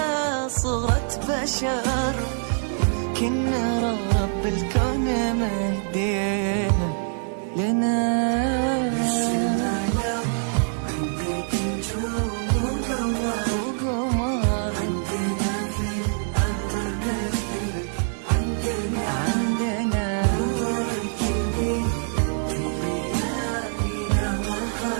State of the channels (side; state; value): left; silent; digital silence